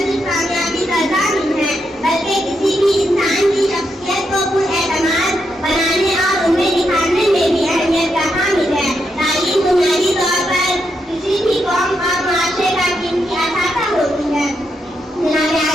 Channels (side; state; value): both; normal; correlation 0.82